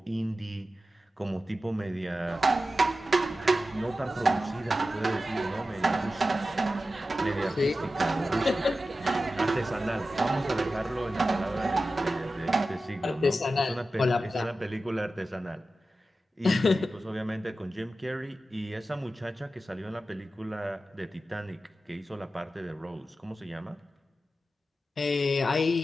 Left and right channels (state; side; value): normal; both; correlation 0.93